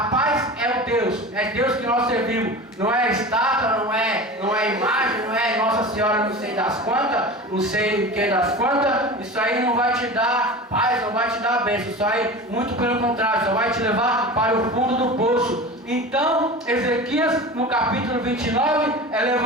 paz é o Deus. É Deus que nós servimos. Não é estátua, não é imagem, não é Nossa Senhora não sei das quantas, não sei quem das quantas. Isso aí não vai te dar paz, não vai te dar bênção. Isso aí, muito pelo contrário, só vai te levar para o fundo do poço. Então, Ezequias, no capítulo 29, é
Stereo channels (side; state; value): both; normal; correlation 0.32